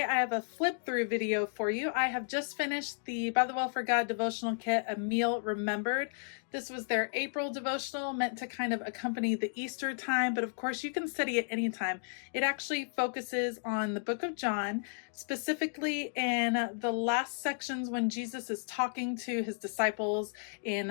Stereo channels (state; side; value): silent; right; digital silence